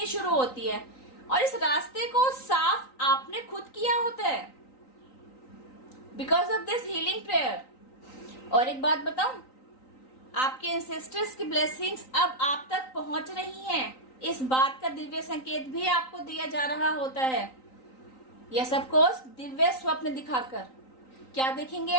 शुरू होती है। और इस रास्ते को साफ आपने खुद किया होता है because of this healing prayer. और एक बात बताऊं, आपके एंसेस्टर्स की ब्लेसिंग्स अब आप तक पहुंच रही हैं, इस बात का दिव्य संकेत भी आपको दिया जा रहा होता है। यस ऑफ कोर्स, दिव्य स्वप्न दिखाकर। क्या देखेंगे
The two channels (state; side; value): late; right; 3.9 ms